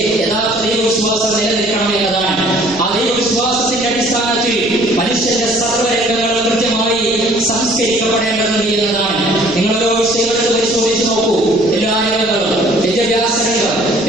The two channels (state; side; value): noise; left; rumble, 20 dB below the sound